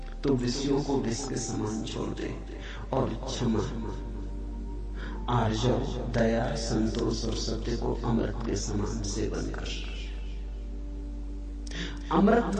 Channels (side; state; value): both; identical; correlation 1.00